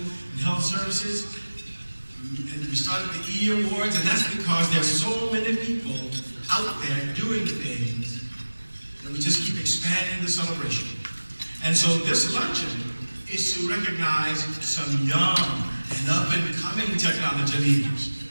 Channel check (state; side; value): inverted; both; correlation -1.00